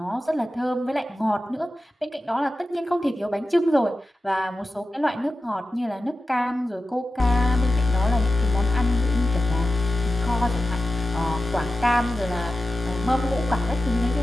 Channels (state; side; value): normal; both; correlation 0.93